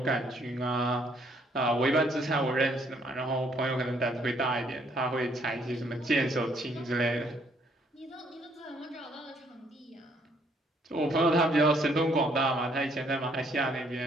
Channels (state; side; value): normal; both; correlation 0.67